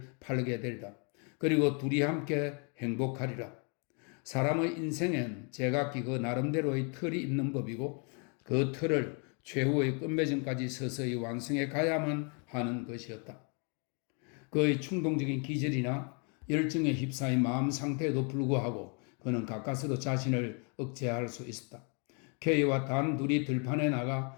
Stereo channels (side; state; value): right; quieter; 37.2 dB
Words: 팔게 되리라. 그리고 둘이 함께 행복하리라. 사람의 인생엔 제각기 그 나름대로의 틀이 있는 법이고 그 틀을 최후의 끝맺음까지 서서히 완성해 가야만 하는 것이었다. 그의 충동적인 기질이나 열정에 휩싸인 마음 상태에도 불구하고 그는 가까스로 자신을 억제할 수 있었다. K와 단 둘이 들판에 나가